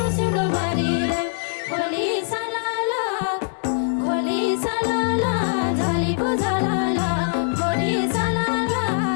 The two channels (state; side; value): silent; right; digital silence